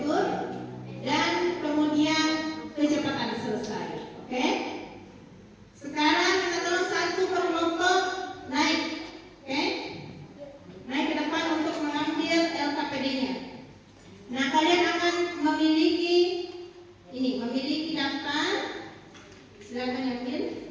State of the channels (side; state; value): both; identical; correlation 1.00